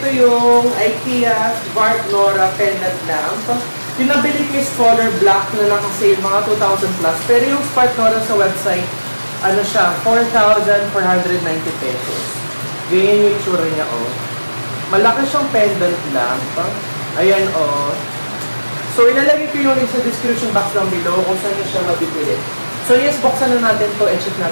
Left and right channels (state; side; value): inverted; both; correlation -1.00